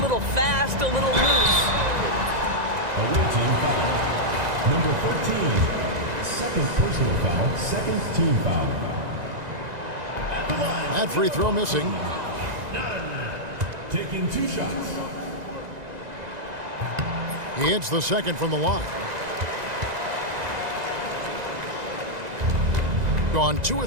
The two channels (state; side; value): late; left; 1.9 ms